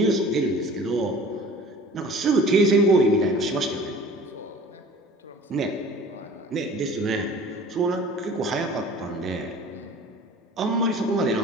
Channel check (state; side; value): normal; both; correlation 0.45